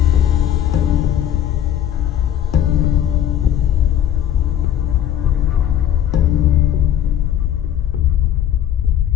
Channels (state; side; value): quieter; right; 10.5 dB